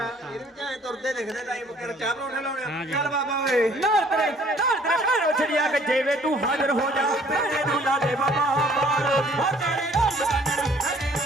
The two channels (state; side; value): normal; both; correlation 0.58